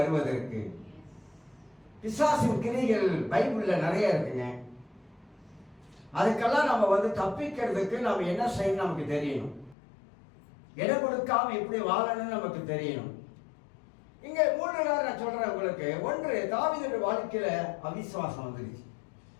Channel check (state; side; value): drops out; right; at 9.8 s